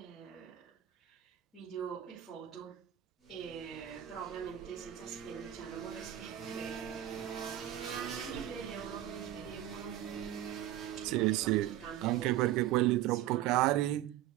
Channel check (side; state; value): left; quieter; 12.8 dB